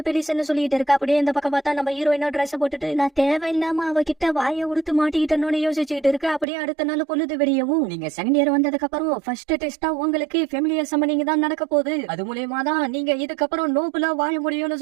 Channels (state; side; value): drops out; left; at 6.5 s